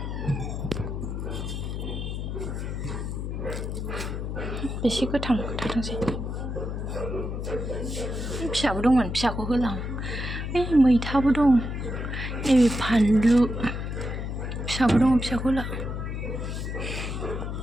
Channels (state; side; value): noise; left; hum, 4 dB below the sound